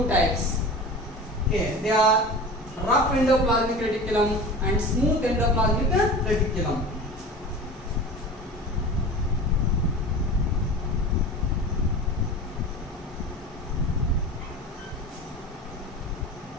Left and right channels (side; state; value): both; normal; correlation 0.34